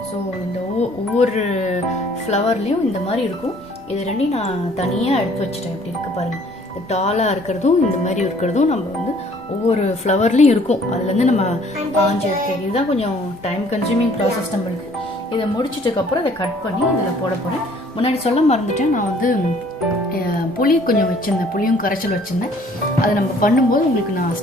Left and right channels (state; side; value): normal; both; correlation 0.58